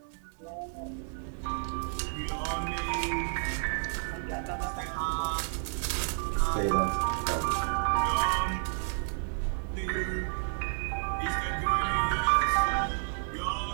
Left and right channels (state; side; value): silent; left; digital silence